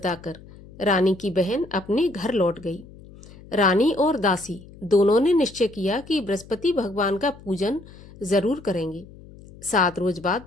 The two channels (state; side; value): noise; left; hum, 20 dB below the sound